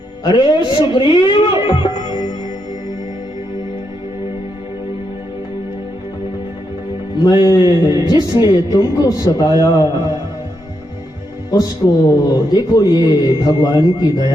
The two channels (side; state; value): both; normal; correlation 0.81